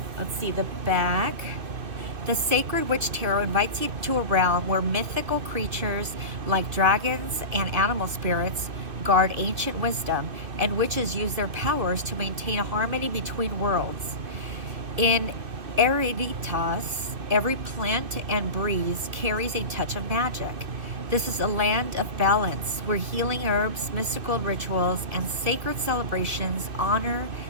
Let's see the back. The Sacred Witch Tarot invites you to a realm where mythical creatures like dragons and animal spirits guard ancient wisdom, and witches use their powers to maintain a harmony between worlds. In Eruditas, every plant and breeze carries a touch of magic. This is a land of balance where healing herbs, mystical rituals, and sacred celebrations honor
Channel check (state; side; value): late; left; 2.5 ms